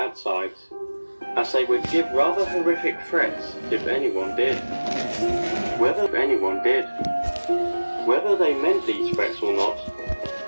sides, as they would give rather horrific threats if anyone did. Whether they meant these threats or not,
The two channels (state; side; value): inverted; both; correlation -1.00